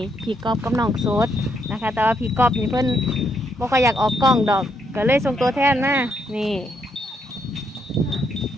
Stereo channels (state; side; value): normal; both; correlation 0.75